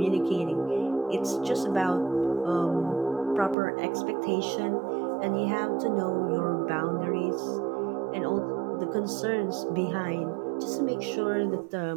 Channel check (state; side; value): drops out; left; at 3.6 s